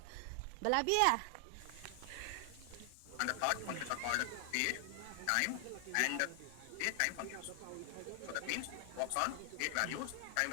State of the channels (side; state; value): both; different; correlation 0.00